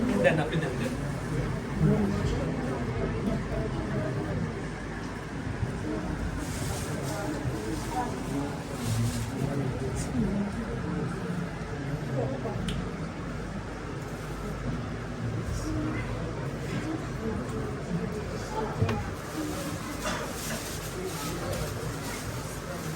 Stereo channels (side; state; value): both; identical; correlation 1.00